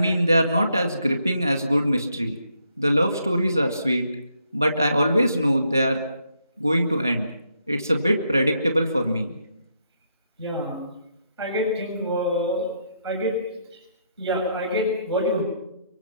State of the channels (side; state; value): both; inverted; correlation -0.75